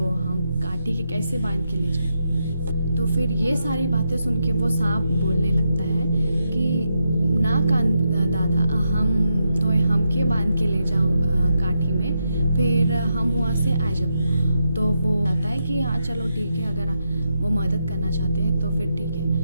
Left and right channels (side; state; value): both; inverted; correlation -0.84